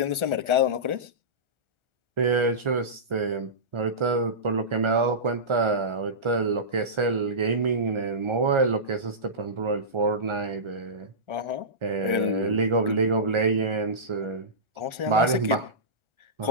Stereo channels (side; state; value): left; late; 1.4 ms